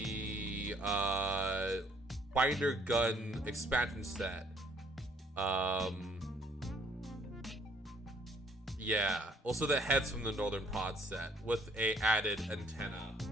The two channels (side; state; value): both; normal; correlation 0.63